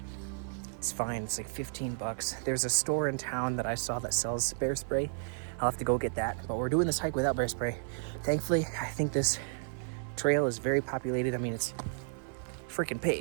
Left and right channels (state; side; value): silent; left; 56 dB below the other